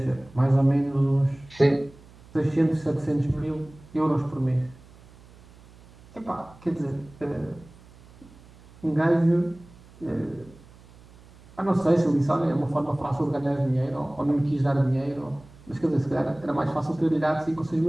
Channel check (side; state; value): right; noise; hum, 24 dB below the sound